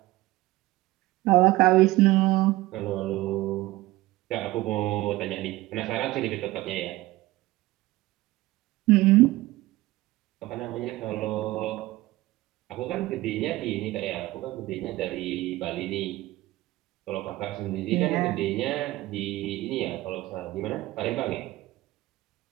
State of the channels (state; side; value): quieter; left; 18.2 dB